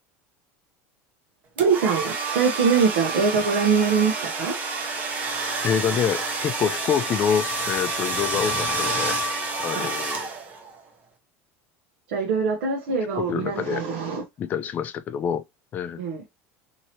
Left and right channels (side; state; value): both; normal; correlation 0.19